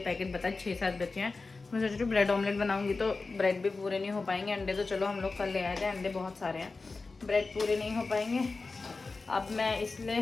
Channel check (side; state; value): right; quieter; 3.9 dB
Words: बता, 6-7 बचे हैं। मैं सोच रही हूँ ब्रेड ऑमलेट बनाऊंगी तो ब्रेड भी पूरे नहीं हो पाएंगे। अंडे तो चलो हम लोग कल ले आए थे, अंडे बहुत सारे हैं, ब्रेड पूरे नहीं हो पाएंगे। अब मैं